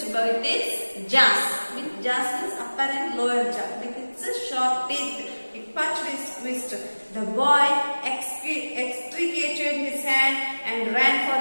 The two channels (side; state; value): both; inverted; correlation -1.00